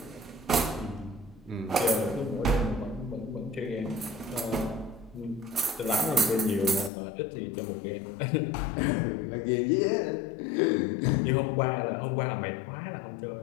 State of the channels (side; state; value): right; drops out; at 6.9 s